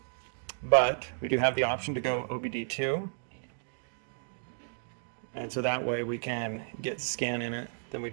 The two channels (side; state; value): left; silent; digital silence